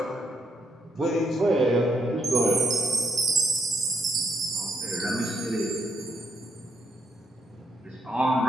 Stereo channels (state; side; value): normal; both; correlation 0.76